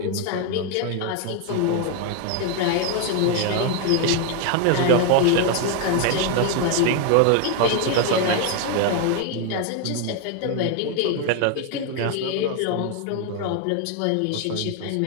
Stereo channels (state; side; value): different; both; correlation 0.01